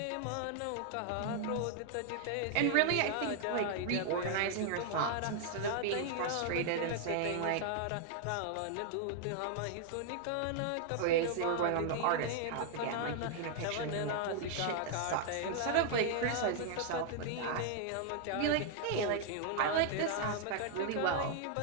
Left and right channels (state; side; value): different; both; correlation 0.00